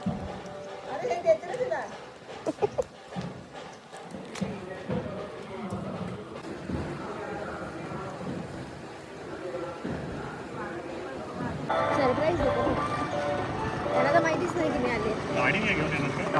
सरप्राईज देतो त्यांना, तर माहितीच नाही की मी आले. गाडी नाही घेऊन येणार का?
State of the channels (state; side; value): identical; both; correlation 1.00